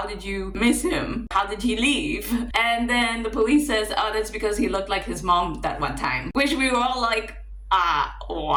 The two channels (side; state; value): both; identical; correlation 1.00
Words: did you miss him? How did he leave? And then the police says, oh, that's because he looked like his mom that one time. Which we were all like,